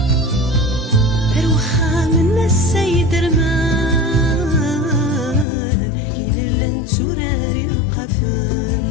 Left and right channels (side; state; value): right; drops out; at 5.5 s